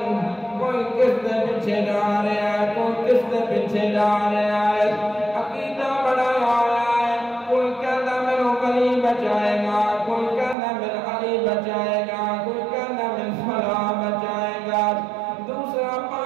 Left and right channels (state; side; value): drops out; left; at 10.6 s